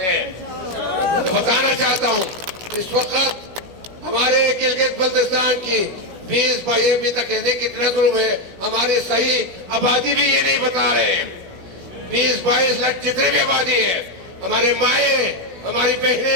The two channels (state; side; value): late; left; 17 ms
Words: ہیں. بتانا چاہتا ہوں اس وقت ہمارے گلگت بلتستان کی 20-22 ابھی تک کہتے کتنا ظلم ہے. ہماری صحیح آبادی بھی یہ نہیں بتا رہے ہیں. 20-22 لاکھ جتنے بھی آبادی ہے, ہمارے مائیں, ہماری